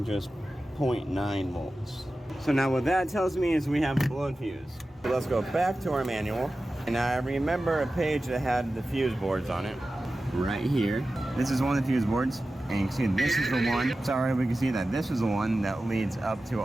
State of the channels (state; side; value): normal; both; correlation 0.94